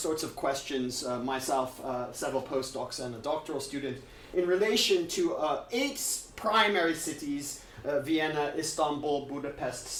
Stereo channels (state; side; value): identical; both; correlation 1.00